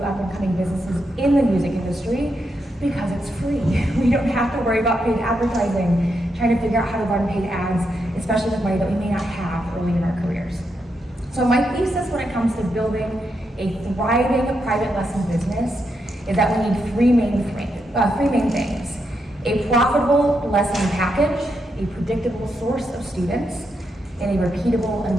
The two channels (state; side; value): normal; both; correlation 0.82